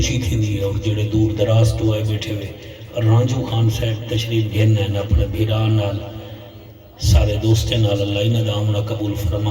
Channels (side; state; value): both; identical; correlation 1.00